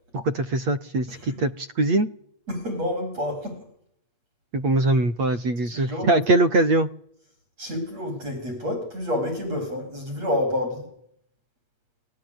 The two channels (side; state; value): left; late; 8.6 ms